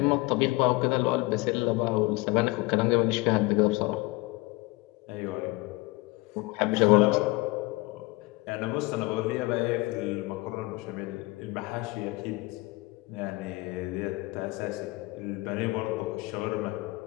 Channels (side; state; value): right; quieter; 22.8 dB